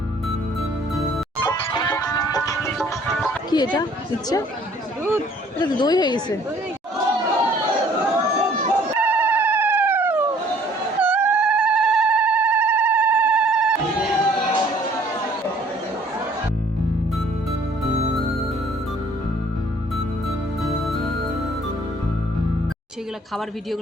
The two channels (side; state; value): both; normal; correlation 0.58